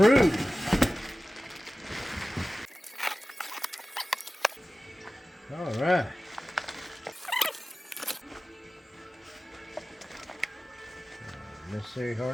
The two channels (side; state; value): both; normal; correlation 0.96